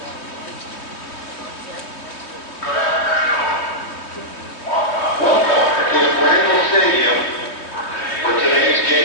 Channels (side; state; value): right; late; 3.1 ms